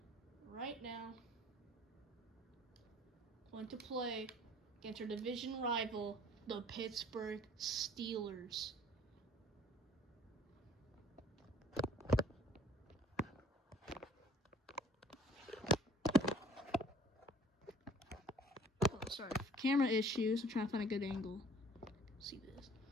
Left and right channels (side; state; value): both; normal; correlation 0.52